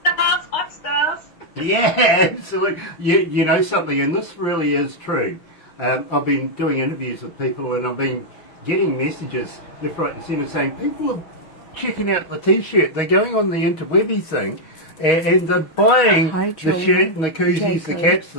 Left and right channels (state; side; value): late; right; 5.8 ms